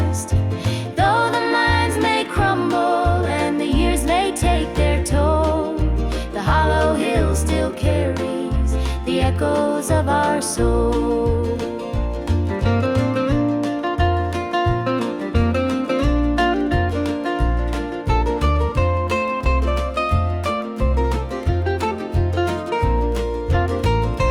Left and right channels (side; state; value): both; identical; correlation 1.00